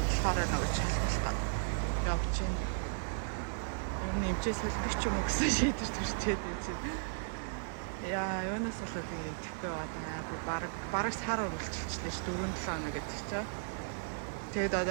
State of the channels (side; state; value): left; silent; digital silence